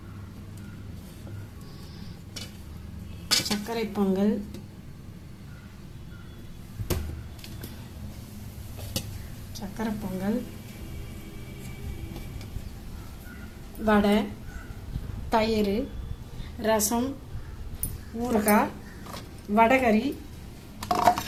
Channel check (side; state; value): both; identical; correlation 1.00